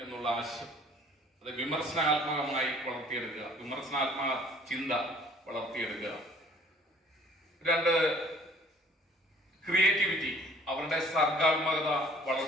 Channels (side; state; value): both; normal; correlation 0.54